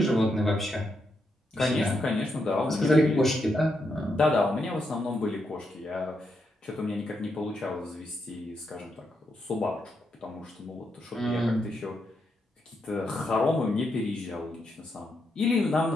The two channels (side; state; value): both; normal; correlation 0.82